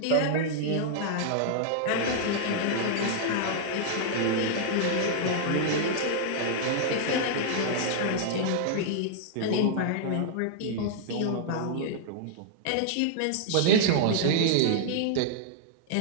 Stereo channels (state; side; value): different; both; correlation -0.01